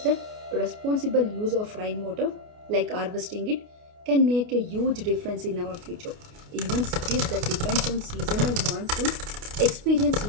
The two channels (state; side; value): late; left; 29 ms